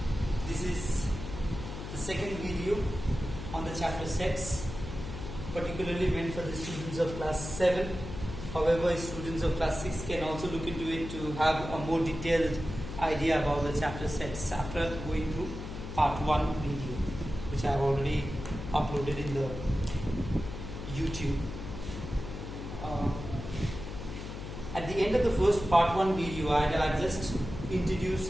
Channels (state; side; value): noise; left; hum, 8 dB below the sound